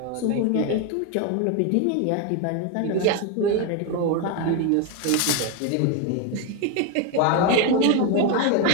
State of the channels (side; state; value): both; different; correlation 0.02